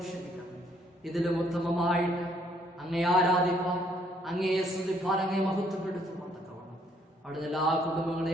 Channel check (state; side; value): normal; both; correlation 0.67